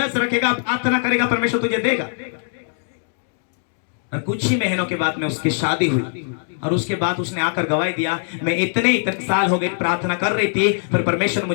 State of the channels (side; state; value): right; silent; digital silence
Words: रखेगा, प्रार्थना करेगा, परमेश्वर तुझे देगा। और कुछ ही महीनों के बाद में उसकी शादी हुई और उसके बाद उसने आकर गवाही दिया, मैं इतने साल हो गए प्रार्थना कर रही थी पर परमेश्वर